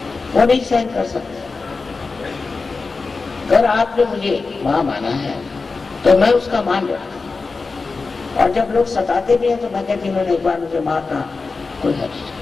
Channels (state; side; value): quieter; right; 4.2 dB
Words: वो नहीं सहन कर सकते। अगर आपने मुझे माँ माना है तो मैं उसका मान रहा, और जब लोग सताते भी हैं तो मैं कहती हूँ उन्होंने एक बार मुझे मारना कोई हर्ज नहीं,